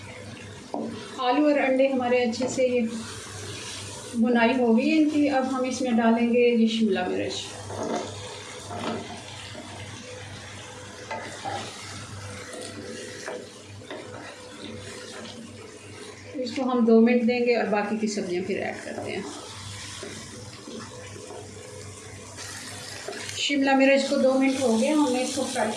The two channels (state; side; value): identical; both; correlation 1.00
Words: आलू और अंडे हमारे अच्छे से ये भुनाई हो गई इनकी। अब हम इसमें डालेंगे ये शिमला मिर्च। इसको हम 2 मिनट देंगे और बाकी की सब्जियां फिर ऐड करते हैं। शिमला मिर्च को 2 मिनट हो गए, हमने इसको फ्राई